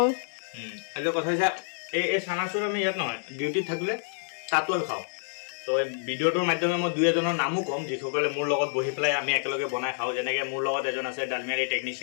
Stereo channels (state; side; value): silent; right; 59 dB below the other